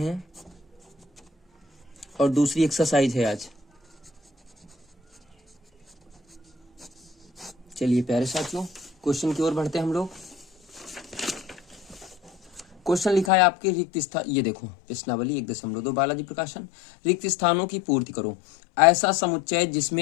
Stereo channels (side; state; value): right; drops out; at 13.3 s